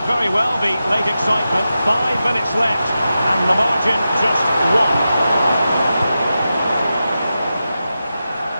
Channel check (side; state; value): both; inverted; correlation -0.91